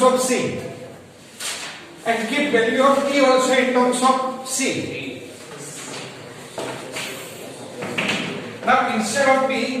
of c and keep value of e also in terms of c. Now instead of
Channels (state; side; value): identical; both; correlation 1.00